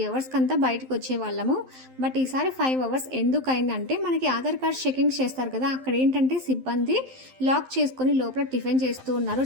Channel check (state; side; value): late; left; 12 ms